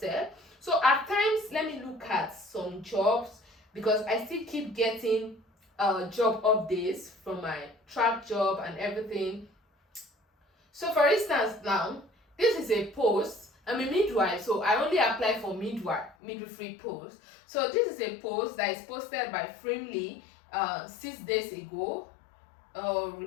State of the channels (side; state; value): right; drops out; at 16.2 s